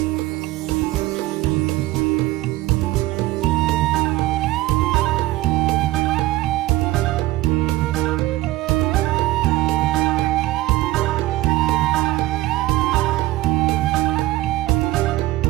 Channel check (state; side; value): quieter; left; 17.4 dB